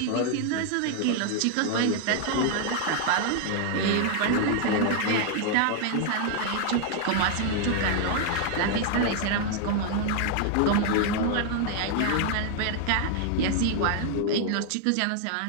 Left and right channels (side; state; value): both; different; correlation 0.00